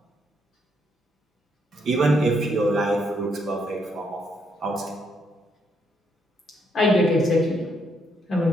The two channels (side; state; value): both; normal; correlation 0.74